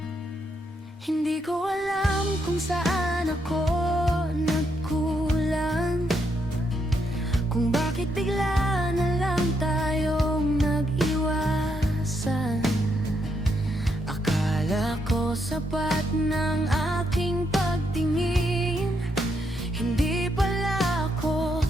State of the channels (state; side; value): normal; both; correlation 0.78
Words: Hindi ko alam kung saan ako nagkulang, kung bakit bigla na lang tayong nag-iwasan. Akala ko sapat ng aking pagtingin, hindi pala ako